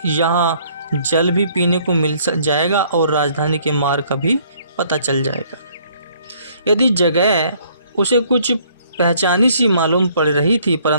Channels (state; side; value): inverted; both; correlation -0.62